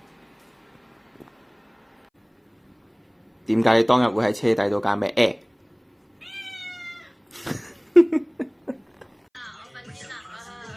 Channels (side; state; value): both; identical; correlation 1.00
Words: 點解你當日會喺車底度㗎？咩